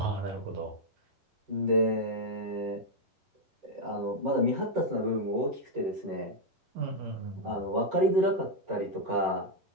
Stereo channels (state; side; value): late; left; 11 ms